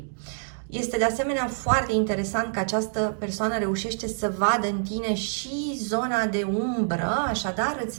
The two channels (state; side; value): silent; left; digital silence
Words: Este de asemenea foarte interesant că această persoană reușește să vadă în tine și zona de umbră, așadar